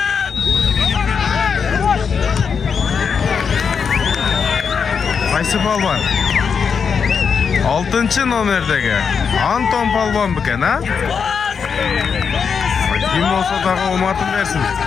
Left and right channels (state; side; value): quieter; right; 6.2 dB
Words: Qaysı balban? 6-cı nomerdeki Anton balban beken ha? Kim olsa dağı omatın versin.